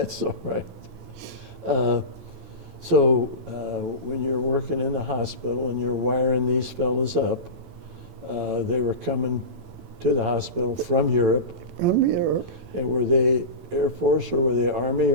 all right. So when you're working in the hospital and you're wiring these fellas up, they were coming to the hospital from Europe. From Europe. And were they Air Force or were they Army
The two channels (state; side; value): late; left; 11 ms